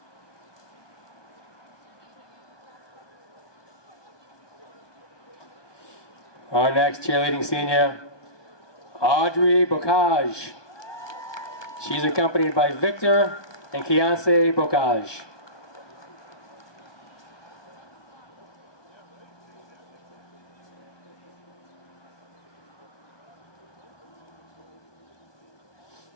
Our next cheerleading senior, Audrey Bocage. She's accompanied by Victor and Kiance Bocage.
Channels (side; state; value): right; late; 1.2 ms